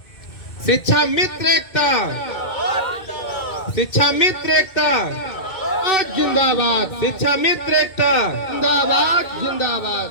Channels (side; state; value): right; late; 2.2 ms